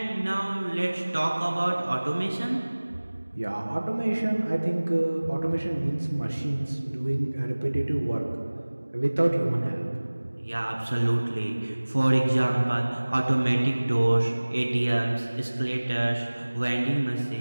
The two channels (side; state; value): both; inverted; correlation -1.00